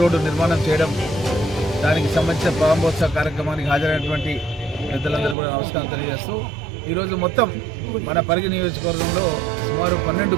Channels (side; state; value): left; drops out; at 5.4 s